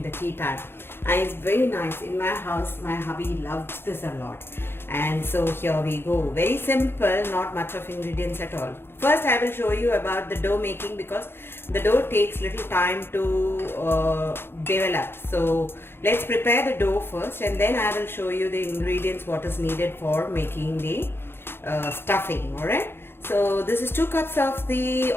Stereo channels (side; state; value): right; late; 0.11 ms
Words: the tea time. And it's very nice. In my house, my hubby loves this a lot. And so here we go. Very simple, not much of ingredients at all. First, I will show you about the dough making because the dough takes little time to develop. So let's prepare the dough first, and then I will show you the ingredients what is needed for making the stuffing. Alright. So this is 2 cups of the